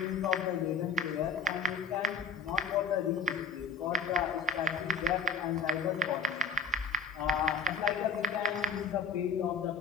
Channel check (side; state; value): right; quieter; 4.4 dB